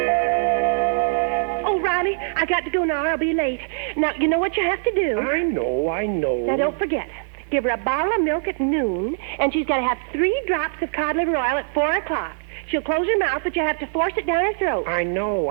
Oh, Riley, I got to go now. I'll be late. Now, you know what you have to do? I know. Now, don't forget. Give her a bottle of milk at noon, and she's got to have 3 drops of cod liver oil at 4 o'clock. She'll close her mouth, but you have to force it down her throat. I know.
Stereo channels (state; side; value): silent; left; digital silence